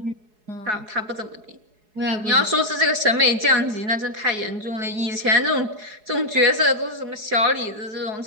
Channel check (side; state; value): left; late; 4.7 ms